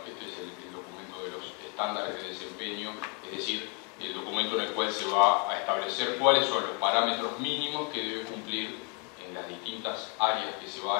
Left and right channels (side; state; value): right; quieter; 32.7 dB